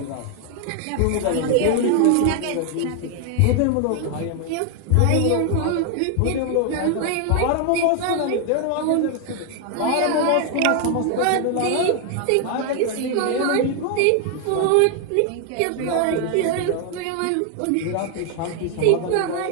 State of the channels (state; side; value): different; both; correlation 0.00